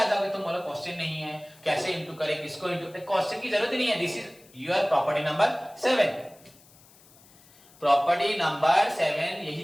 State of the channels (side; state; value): left; noise; hiss, 26 dB below the sound